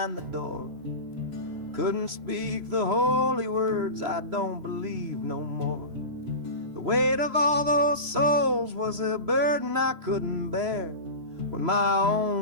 the door. Couldn't speak the holy words, I don't believe no more. The weight of all those souls was a burden I couldn't bear, when my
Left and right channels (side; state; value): left; late; 3.0 ms